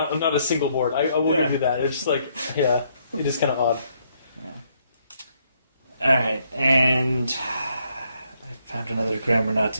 a single board. I will give you that. It's just like it is kind of odd. Yeah. All right, and I found another grammar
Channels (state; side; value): inverted; both; correlation -0.72